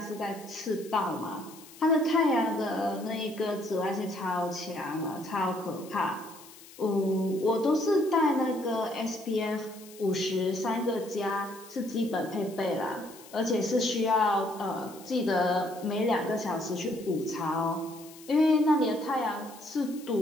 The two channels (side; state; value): left; noise; hiss, 20 dB below the sound